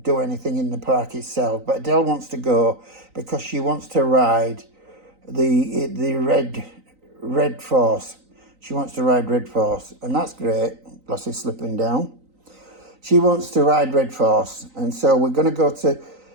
do anything in the park itself, but Adele wants to go because she wants to ride the Red Force. She wants to ride Red Force, and that's great. Lossie's slipping down. She wants to ride Red Force, and so we're going to go to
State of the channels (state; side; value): late; left; 3.9 ms